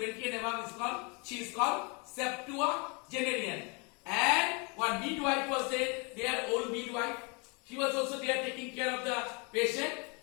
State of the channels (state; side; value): quieter; right; 32.1 dB